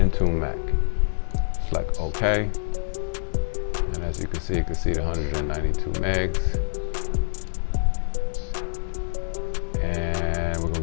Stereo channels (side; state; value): right; silent; digital silence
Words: Select OK, and as you can see the 192 megs. And we're